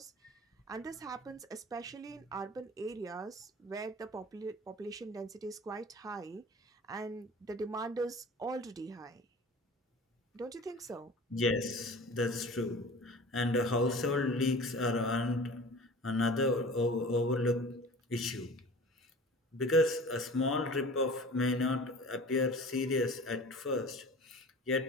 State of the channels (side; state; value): both; normal; correlation 0.41